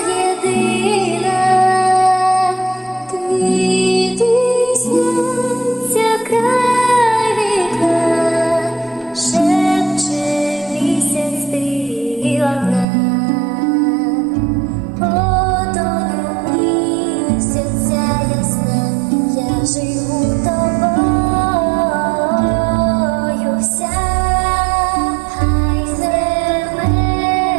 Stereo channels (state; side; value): drops out; left; at 12.9 s